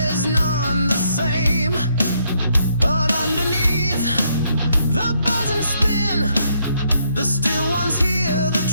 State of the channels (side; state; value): both; inverted; correlation -0.73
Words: none the same. But underneath the buzz and spin, the still ones hear the